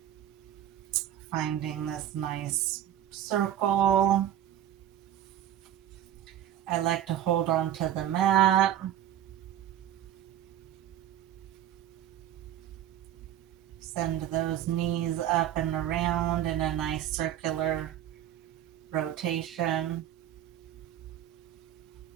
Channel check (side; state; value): left; quieter; 11.4 dB